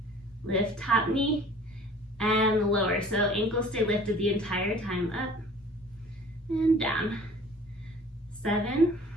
Lift top knee and lower. So ankles stay lifted the entire time, up and down. 7,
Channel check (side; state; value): both; normal; correlation 0.48